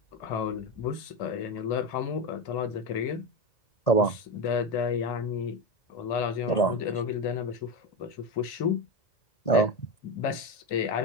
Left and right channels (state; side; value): late; right; 2.4 ms